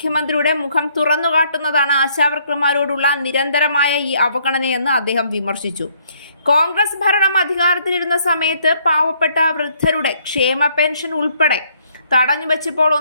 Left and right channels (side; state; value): both; inverted; correlation -0.66